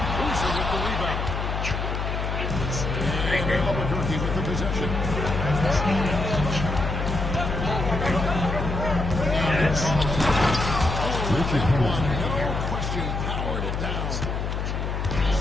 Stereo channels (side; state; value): left; noise; hum, 2 dB below the sound